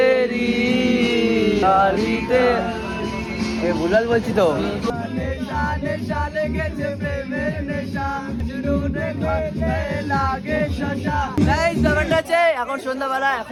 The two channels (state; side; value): identical; both; correlation 1.00